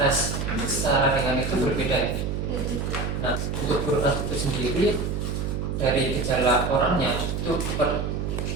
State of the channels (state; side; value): noise; right; hum, 2 dB below the sound